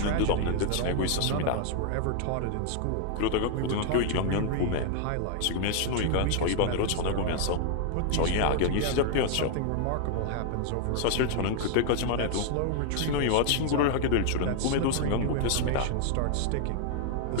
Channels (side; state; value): both; different; correlation 0.00